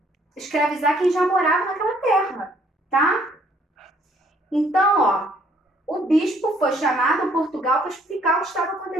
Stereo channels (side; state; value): both; normal; correlation 0.63